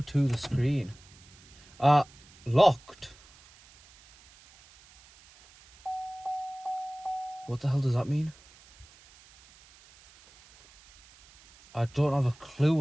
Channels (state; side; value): noise; right; hiss, 25 dB below the sound